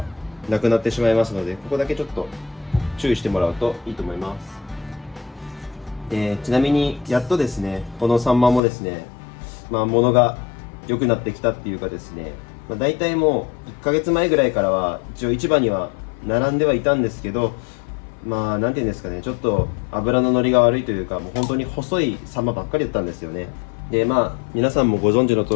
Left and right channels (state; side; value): drops out; right; at 8.6 s